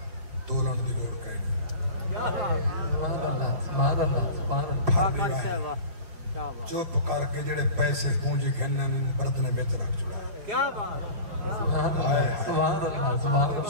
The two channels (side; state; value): left; late; 5.6 ms